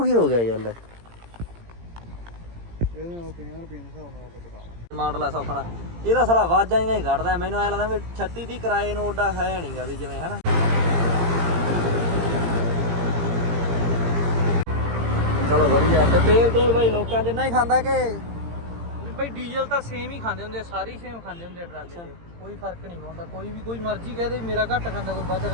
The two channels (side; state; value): left; late; 17 ms